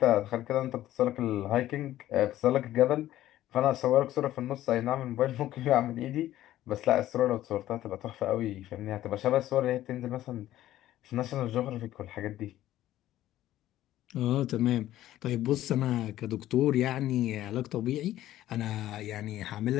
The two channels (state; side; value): quieter; right; 13.9 dB